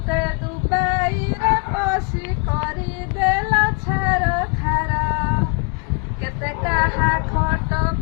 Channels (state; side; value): quieter; right; 34.3 dB